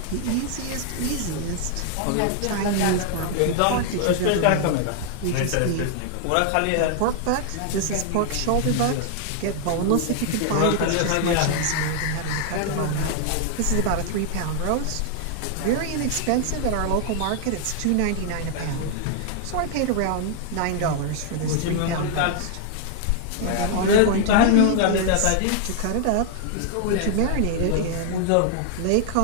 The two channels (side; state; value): both; different; correlation 0.00